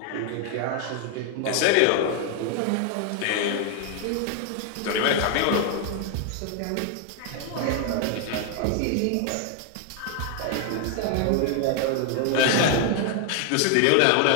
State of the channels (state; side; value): different; both; correlation 0.00